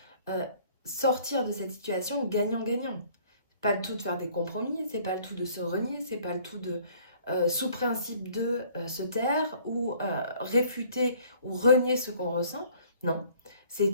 euh, sortir de cette situation gagnant-gagnant. Pas le tout de faire des compromis, c'est pas le tout de se renier, c'est pas le tout de, sous principe de se taire ou réfuter ou renier ce qu'on ressent. Non, c'est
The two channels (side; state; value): both; inverted; correlation -0.56